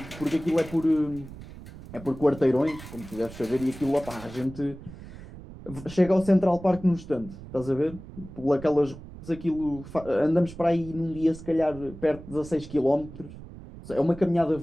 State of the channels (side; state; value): right; noise; rumble, 15 dB below the sound